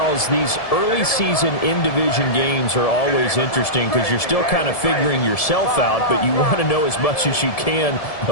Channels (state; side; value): late; right; 1.7 ms